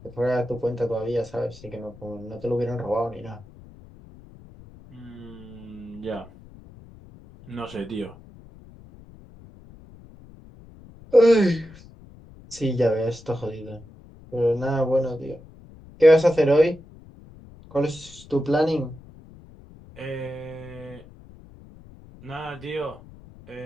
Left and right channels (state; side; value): noise; left; rumble, 21 dB below the sound